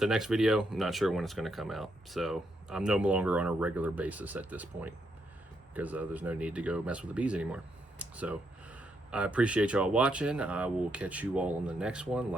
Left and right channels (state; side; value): normal; both; correlation 0.78